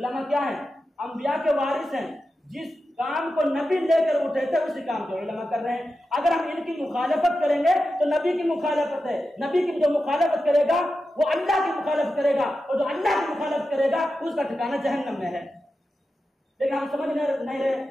کیا ہیں؟ انبیاء کے وارث ہیں۔ جس کام کو نبی لے کر اٹھے تھے اسی کام کو علماء کر رہے ہیں۔ اگر ہم ان کی مخالفت کریں گے تو نبی کی مخالفت ہے، نبی کی جو مخالفت کرے گا وہ اللہ کی مخالفت کرے گا، اور جو اللہ کی مخالفت کرے گا اس کا ٹھکانہ جہنم میں ہے۔ لیکن ہم سمجھ نہیں رہے،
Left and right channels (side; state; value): both; normal; correlation 0.91